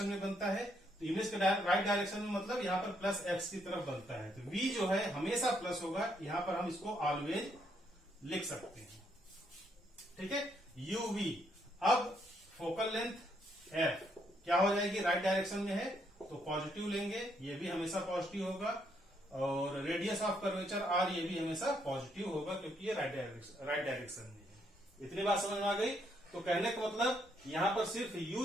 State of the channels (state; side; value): normal; both; correlation 0.73